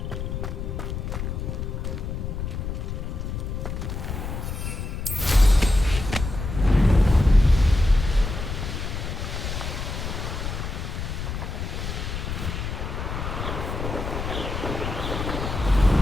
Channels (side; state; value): left; noise; rumble, 4 dB below the sound